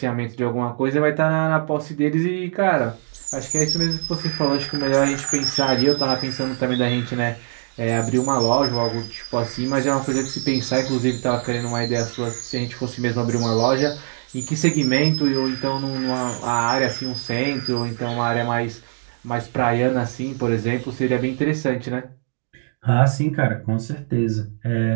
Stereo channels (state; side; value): silent; left; digital silence